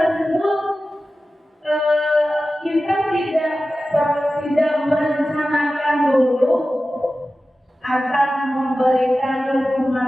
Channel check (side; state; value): both; normal; correlation 0.94